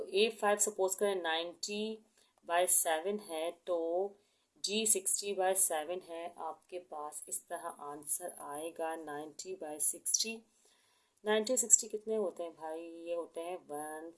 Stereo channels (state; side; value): identical; both; correlation 1.00